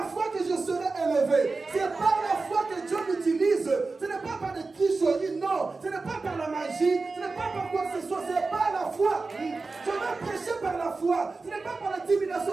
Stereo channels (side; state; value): left; quieter; 3.9 dB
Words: foi que je serai élevé. C'est par la foi que Dieu m'utilise. Ce n'est pas par des tricheries, non. Ce n'est pas par la magie. Ce n'est pas par quoi que ce soit. C'est par la foi. Je vais prêcher par la foi. Ce n'est pas par